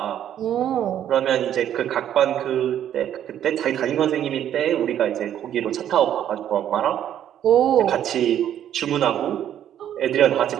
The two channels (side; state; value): left; quieter; 10.5 dB